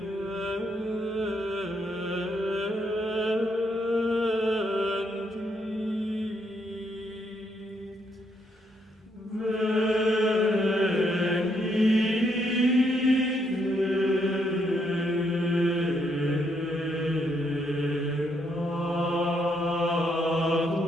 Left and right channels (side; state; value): both; normal; correlation 0.75